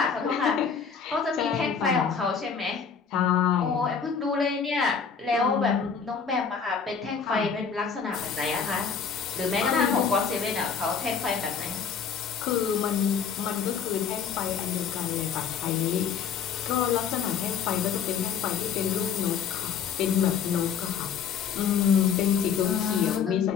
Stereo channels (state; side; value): quieter; right; 6.6 dB